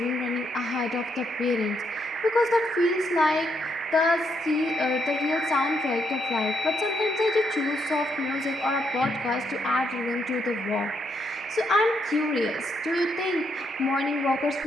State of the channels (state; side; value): normal; both; correlation 0.77